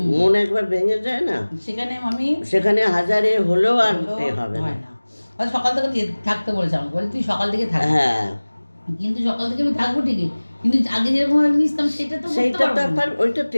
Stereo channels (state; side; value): inverted; both; correlation -1.00